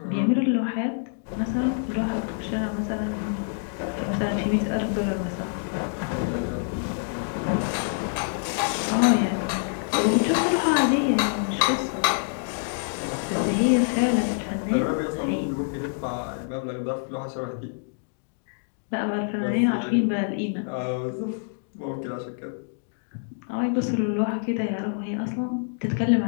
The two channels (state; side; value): silent; right; digital silence